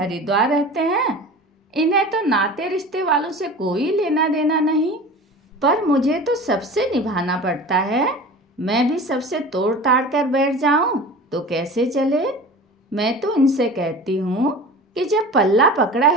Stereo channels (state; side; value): normal; both; correlation 0.37